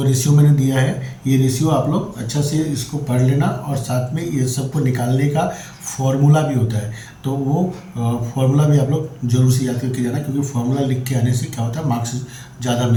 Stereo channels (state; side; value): identical; both; correlation 1.00